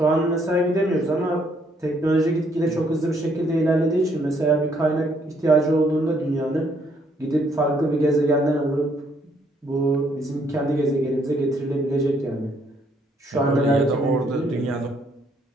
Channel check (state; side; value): normal; both; correlation 0.69